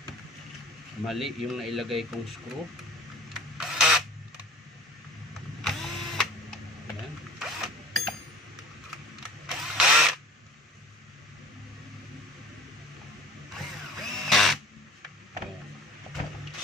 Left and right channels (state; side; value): normal; both; correlation 0.45